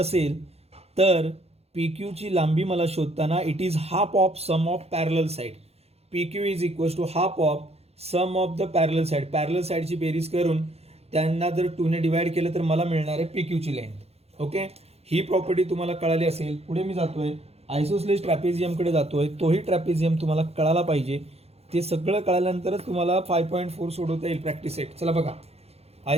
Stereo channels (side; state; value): left; late; 0.30 ms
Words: तर PQ ची लांबी मला शोधताना it is half of sum of parallel side. PQ is equals to half of sum of the parallel side. Parallel साइडची बेरीज करून त्यांना जर 2 ने डिवाइड केलं तर मला मिळणार आहे PQ ची लेंथ. ओके, ही प्रॉपर्टी तुम्हाला कळाली असेल. पुढे मी जातोय आयसोसलेस ट्रॅपेझियमकडे जातोय. तोही ट्रॅपेझियम तुम्हाला कळाला पाहिजे. ते सगळं कळाल्यानंतरच तुम्हाला 5.4 सोडवता येईल प्रॅक्टिस सेट. चला बघा,